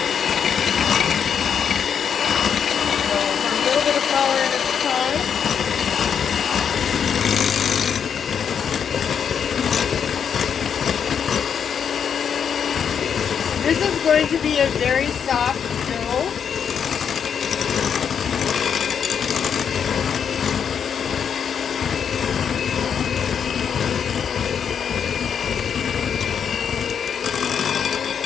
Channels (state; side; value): quieter; right; 7.5 dB